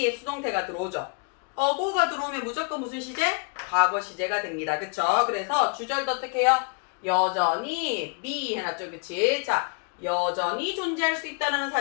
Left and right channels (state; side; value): quieter; right; 36.0 dB